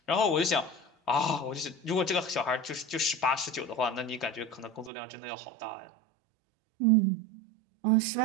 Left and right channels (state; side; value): drops out; left; at 4.9 s